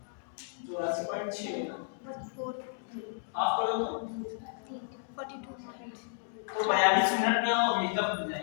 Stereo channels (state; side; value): silent; right; digital silence